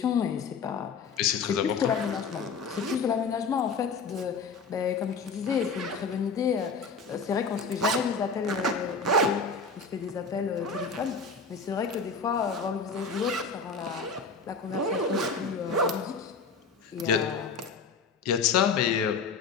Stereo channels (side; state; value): right; quieter; 4.7 dB